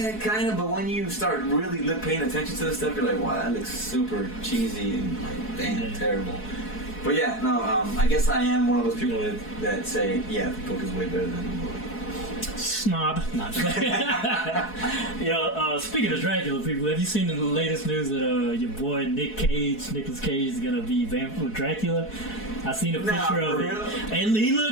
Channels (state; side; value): late; right; 4.7 ms